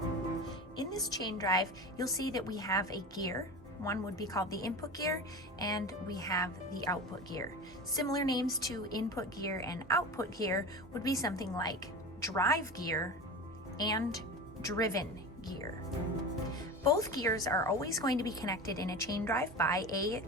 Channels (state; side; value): normal; both; correlation 0.29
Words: In this chain drive, you'll see that we have a gear. One would be called the input gear, and we have the output gear. Similar names to input gear and output gear would be something like drive gear and driven gear. Both gears are always going to be connected in a chain drive by a